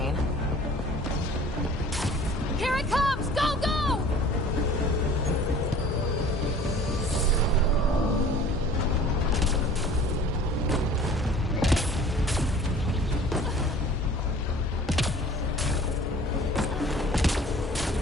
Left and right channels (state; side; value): normal; both; correlation 0.47